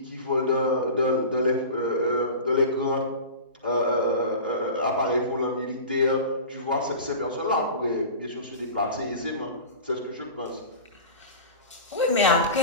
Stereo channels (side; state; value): both; inverted; correlation -0.34